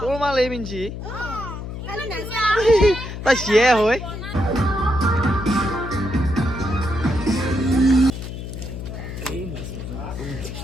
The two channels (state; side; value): noise; left; hum, 8 dB below the sound